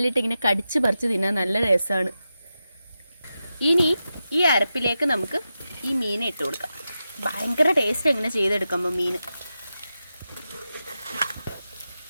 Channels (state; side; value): inverted; both; correlation -0.90